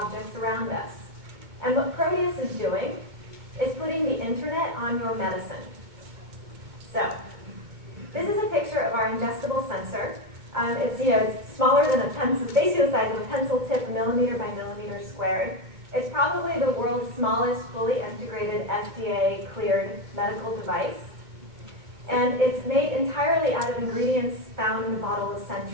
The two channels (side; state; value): left; late; 2.2 ms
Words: around us. And what Proteus is doing is putting the internet on your medicine. So, this is a picture of our ingestible sensor. It's smaller than a pencil, basically the size of a pencil tip, millimeter by millimeter squared. It's probably the world's smallest fully integrated FDA-cleared medical device. And it's made entirely out of ingredients found in a bottle of